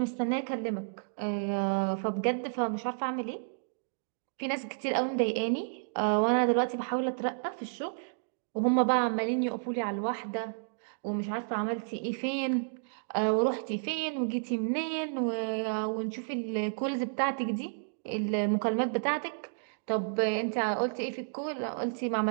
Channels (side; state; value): left; silent; digital silence